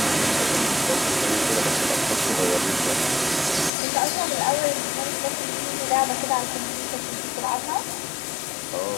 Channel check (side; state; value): right; drops out; at 3.7 s